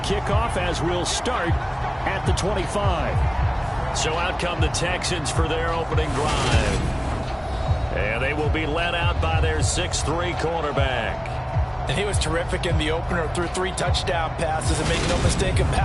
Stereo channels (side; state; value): both; identical; correlation 1.00